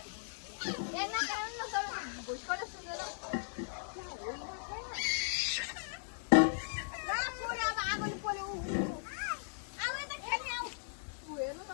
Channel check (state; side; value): silent; right; 53 dB below the other